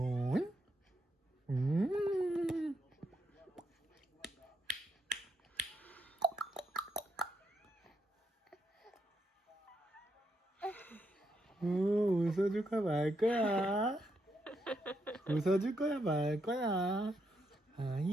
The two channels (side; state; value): both; normal; correlation 0.79